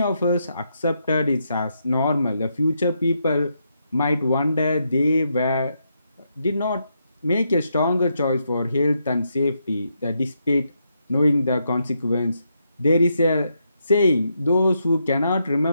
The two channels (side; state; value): both; inverted; correlation -0.80